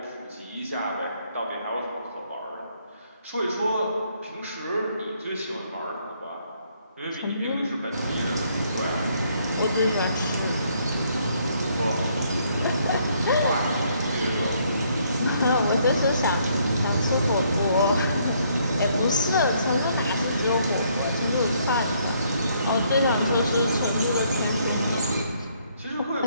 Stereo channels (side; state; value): both; inverted; correlation -0.69